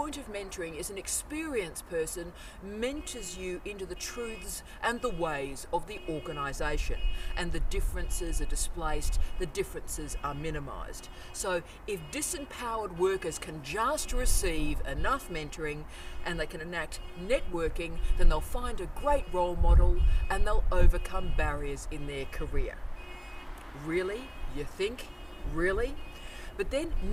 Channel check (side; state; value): both; identical; correlation 1.00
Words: of mentoring is an experienced person mentors you into the truths and the ways of the organisation, and the differences are displaced, the differences are minimised. So if disempowered workers can just receive enough mentoring and they can enact networking, then they'll find a great role model and they'll overcome barriers in their career. Really? You think? Really? But then